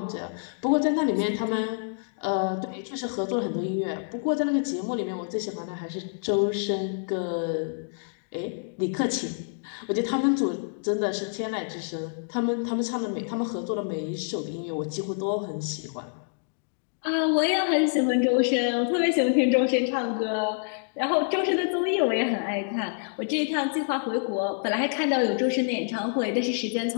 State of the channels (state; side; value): silent; right; digital silence